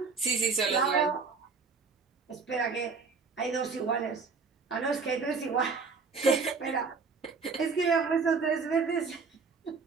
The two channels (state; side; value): quieter; left; 4.8 dB